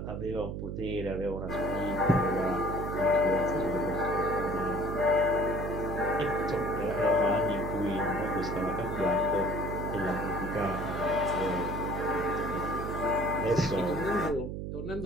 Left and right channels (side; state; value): right; noise; hum, 5 dB below the sound